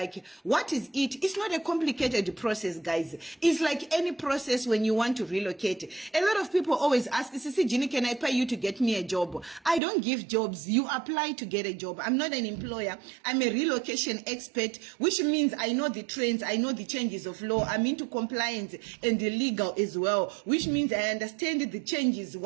what is it? It's not a complicated process, guys. It's like any process when you want to relocate. A lot of people always ask, Sisi Ginny, can I pay you to get me a job? I don't give jobs. You apply to get a job. I'm not an employer. I'm a relocation expert, which means I know the trends, I know the changes of law, I'm into compliance and the legal as well, which means I understand the changes,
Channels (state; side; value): drops out; left; at 9.8 s